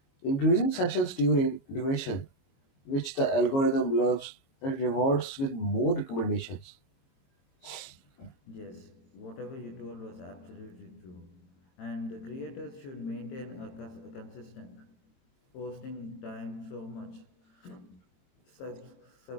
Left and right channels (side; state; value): right; late; 22 ms